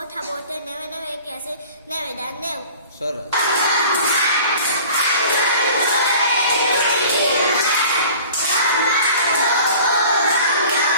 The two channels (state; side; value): inverted; both; correlation -0.44